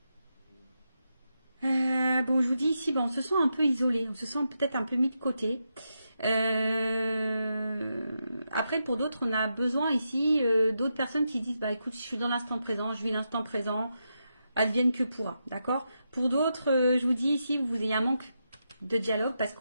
bon, je vous dis ici, bon, on se sent un peu isolé, on se sent peut-être un peu mis de côté. Après, pour d'autres, on a besoin ici d'autres personnes qui disent, bah écoute, je suis dans l'instant présent, je vis l'instant présent, advienne que pourra, d'accord? Pour d'autres, je vous dis ici, vous ayez un manque de dialogue parce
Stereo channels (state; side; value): inverted; both; correlation -0.85